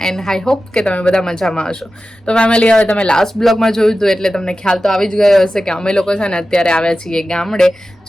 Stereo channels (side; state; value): both; normal; correlation 0.94